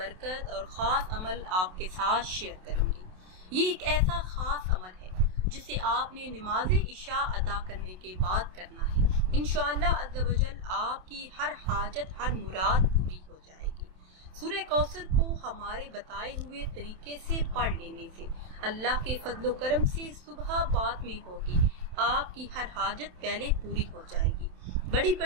और ख़ास अमल आपके साथ शेयर करूंगी। ये एक ऐसा ख़ास अमल है जिसे आपने नमाज इशा अदा करने के बाद करना है। इंशाअल्लाह अज़्ज़ व जल आपकी हर हाजत, हर मुराद पूरी हो जाएगी। सूरह कौसर को हमारे बताए हुए तरीके से पढ़ लेने से अल्लाह के फजलो करम से सुबह बाद में होगी आपकी हर हाजत पहले पूरी हो जाएगी। बड़ी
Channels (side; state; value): left; late; 27 ms